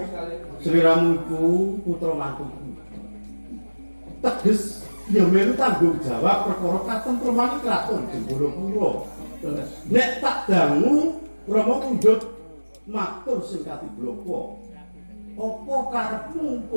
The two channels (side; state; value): both; inverted; correlation -1.00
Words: Sri Ramu iku putra mantuku. Teges ya melu tanggung jawab perkara katentreman kraton Jenggolapura. Nek tak dangu Rama mundhut matur sing katibloko. Apa karepmu